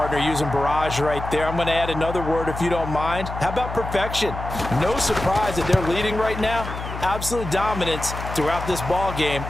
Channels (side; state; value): left; noise; hum, 8 dB below the sound